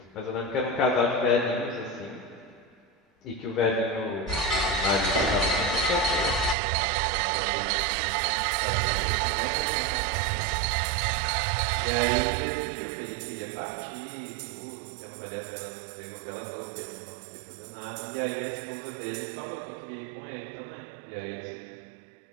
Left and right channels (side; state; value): left; drops out; at 6.6 s